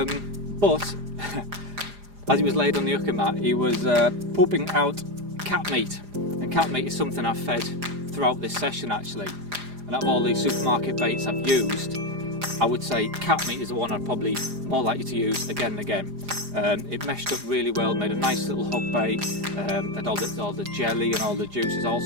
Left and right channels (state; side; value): late; left; 4.9 ms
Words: as he was laid on the Inuka mat, he was pooping out cat meat. And cat meat is something I've fed throughout this session actually. And out of all these supermarket baits I've used, I would say cat meat is the one I'd probably more likely to use again and again. It meshed up really well, made a nice little hook bait, and all the jelly and all the juices all